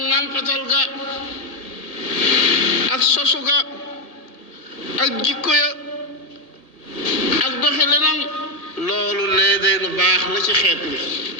nàmpatal ga ak sosu ga ak jikko ya ak doxi lenam loolu lee day lu baax la ci xeet bi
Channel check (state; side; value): late; right; 1.8 ms